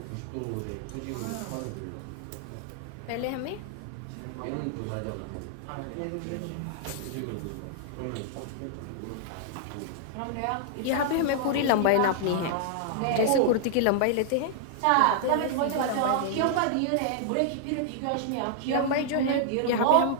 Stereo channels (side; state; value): both; different; correlation -0.01